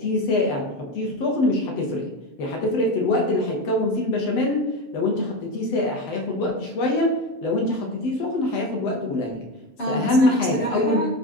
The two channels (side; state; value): right; late; 7.1 ms